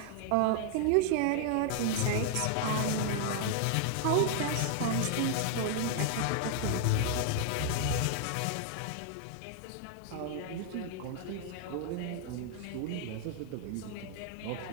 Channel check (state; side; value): different; both; correlation 0.00